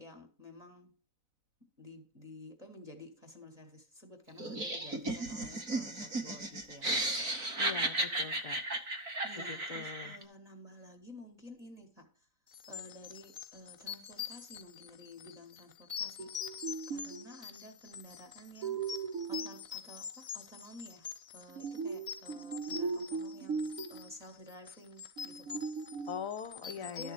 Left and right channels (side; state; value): left; late; 4.0 ms